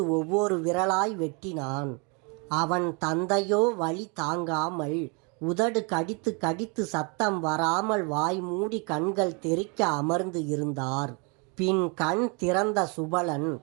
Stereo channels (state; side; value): quieter; left; 33.0 dB